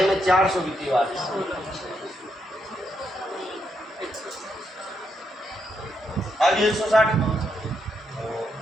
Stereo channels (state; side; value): normal; both; correlation 0.80